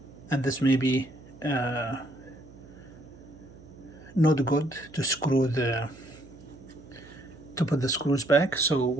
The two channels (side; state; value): right; noise; hum, 21 dB below the sound